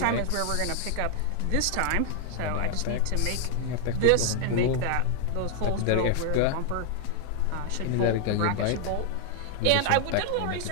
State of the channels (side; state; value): both; different; correlation 0.00